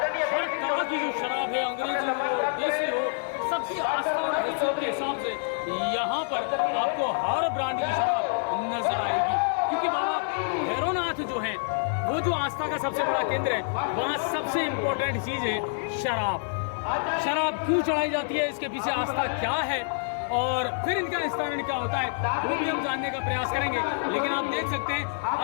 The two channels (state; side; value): silent; right; digital silence